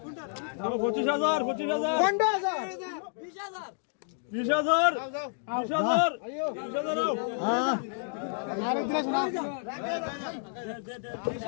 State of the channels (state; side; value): silent; right; digital silence